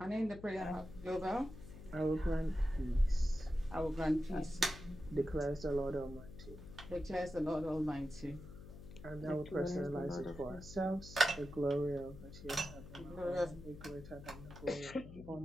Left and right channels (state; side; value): noise; left; hum, 14 dB below the sound